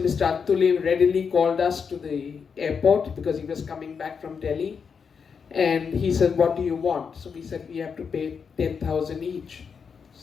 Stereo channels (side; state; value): right; quieter; 6.2 dB